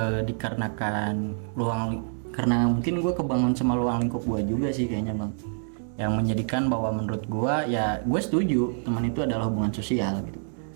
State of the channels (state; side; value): silent; left; 60 dB below the other